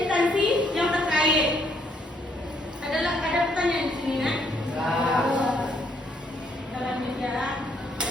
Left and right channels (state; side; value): normal; both; correlation 0.70